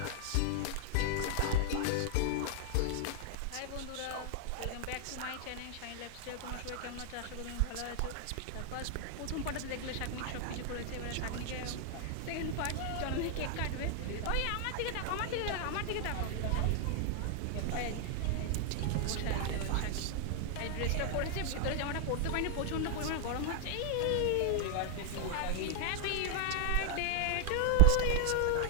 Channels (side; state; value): both; different; correlation 0.00